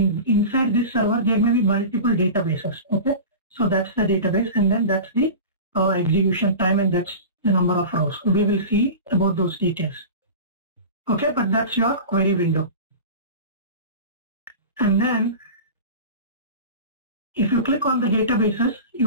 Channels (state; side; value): inverted; both; correlation -0.32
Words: inside this server there may be multiple databases. Okay, so that's the database, and then that's the execution time, and that's the number of rows. We will see about those details. Okay, but that's your query window. And then if you click on the databases,